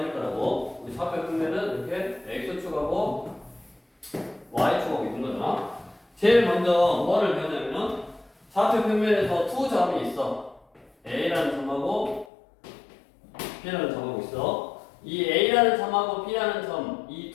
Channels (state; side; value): drops out; right; at 12.2 s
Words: 거라고. 우리 좌표 평면은 이렇게 x축하고 y축하고 있는 거잖아. 제일 먼저 뭐를 배우냐면 좌표 평면에서 두 점이 있어. A라는 점하고 B라는 점하고 있어. 이 A라는 점하고 B라는 점, 이